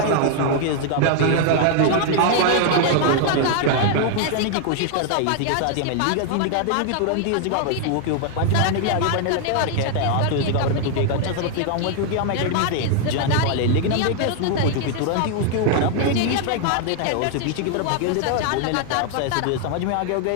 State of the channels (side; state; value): both; different; correlation 0.00